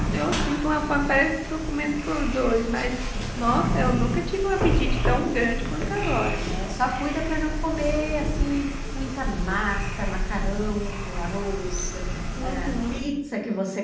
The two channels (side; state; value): both; identical; correlation 1.00